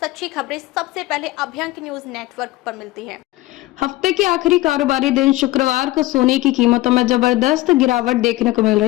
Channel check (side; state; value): right; quieter; 18.3 dB